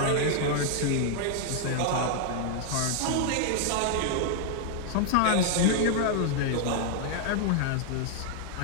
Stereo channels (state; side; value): different; both; correlation 0.00